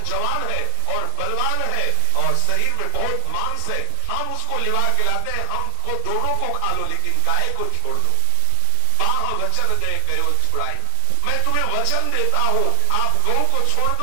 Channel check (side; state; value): both; different; correlation 0.00